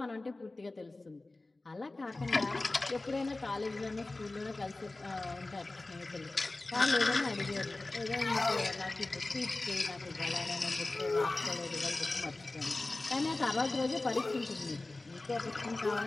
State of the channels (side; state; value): right; quieter; 3.1 dB